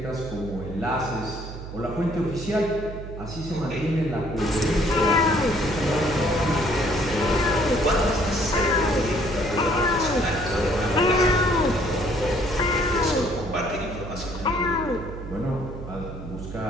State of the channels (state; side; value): noise; right; hum, 11 dB below the sound